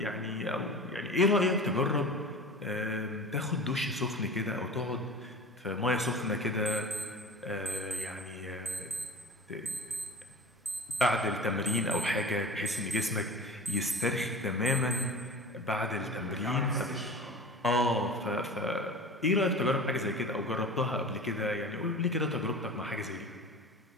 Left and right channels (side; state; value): both; normal; correlation 0.35